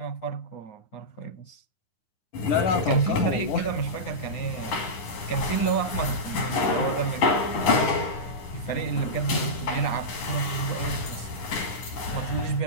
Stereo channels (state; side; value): late; right; 9.7 ms